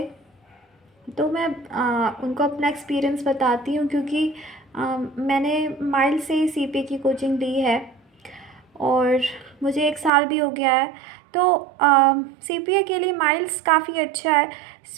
तो मैं उनको अपना एक्सपीरियंस बताती हूँ, क्योंकि मैंने माइल्स से ही सीपीए की कोचिंग ली है और मुझे 1 साल भी हो गया है। तो सीपीए के लिए माइल्स काफ़ी अच्छा है।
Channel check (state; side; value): drops out; left; at 10.1 s